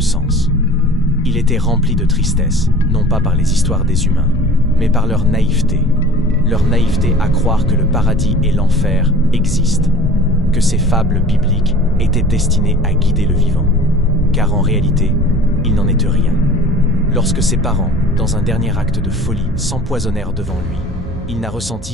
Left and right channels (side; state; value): both; normal; correlation 0.43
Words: sens. Il était rempli de tristesse, non pas par les histoires des humains, mais par leur naïveté. Leur naïveté à croire que le paradis et l'enfer existent, que ces fables bibliques étaient destinées à guider le vivant. Car en réalité, il n'en était rien. Lorsque ses parents, dans un dernier acte de folie, s'empoisonnèrent devant lui, il n'a